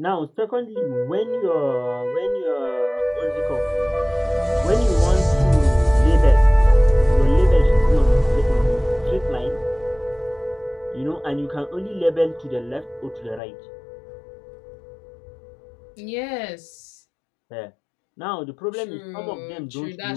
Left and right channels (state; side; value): drops out; right; at 13.4 s